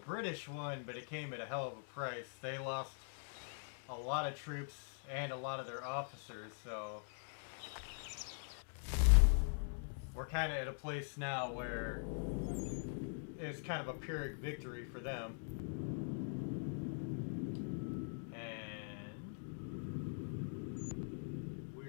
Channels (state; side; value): silent; right; digital silence